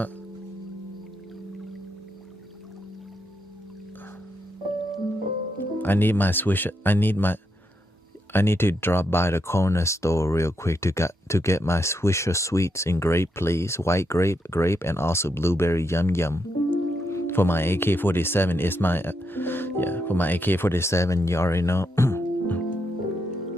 I need my swish. I need to drop by the corner store real quick to get my Swisher Sweets in grape, please. White grape, and also blueberry yum yum. For my AK-47, it's my for my AK-47, you already know.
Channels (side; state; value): both; normal; correlation 0.81